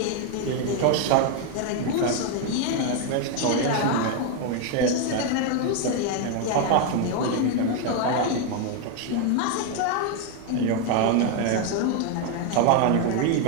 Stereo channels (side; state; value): both; different; correlation 0.01